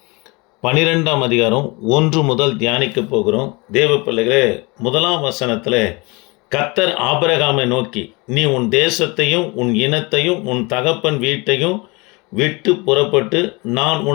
12ஆம் அதிகாரம் 1 முதல் தியானிக்க போகிறோம். தேவ பிள்ளைகளே, 1ஆம் வசனத்தில் கர்த்தர் ஆபிரகாமை நோக்கி, நீ உன் தேசத்தையும் உன் இனத்தையும் உன் தகப்பன் வீட்டையும் விட்டு புறப்பட்டு நான்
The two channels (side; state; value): right; quieter; 26.5 dB